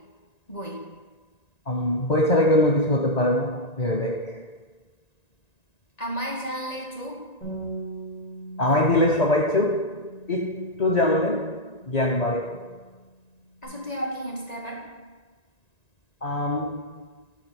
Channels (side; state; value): right; late; 1.9 ms